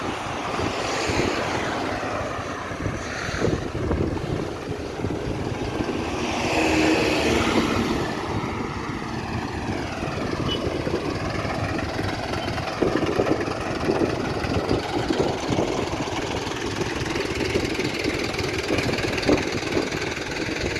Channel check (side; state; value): both; identical; correlation 1.00